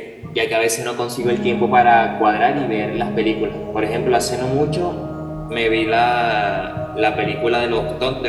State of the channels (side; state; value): both; identical; correlation 1.00